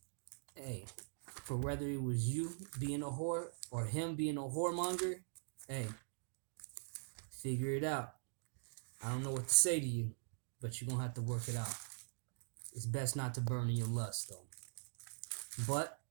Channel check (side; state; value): left; silent; digital silence